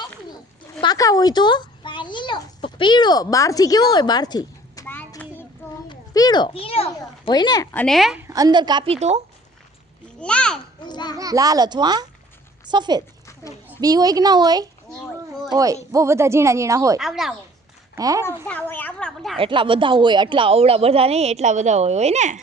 પીળો. બહારથી કેવો હોય? બહારથી પીળો હોય ને. અને અંદર કાપી તો લાલ અથવા સફેદ. બી હોય કે ના હોય? હોય. બહુ બધા ઝીણા ઝીણા હોય. હે? એટલા બધા હોય. એટલા અવળા બધા નહીં, એટલા બધા હોય ને.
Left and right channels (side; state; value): both; normal; correlation 0.53